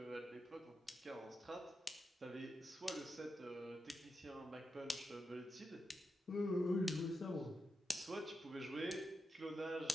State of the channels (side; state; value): both; normal; correlation 0.87